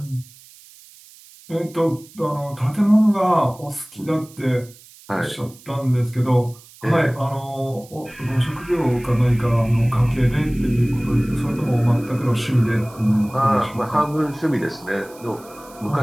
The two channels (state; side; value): noise; right; hiss, 23 dB below the sound